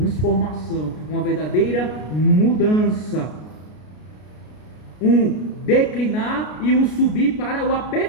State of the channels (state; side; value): late; right; 33 ms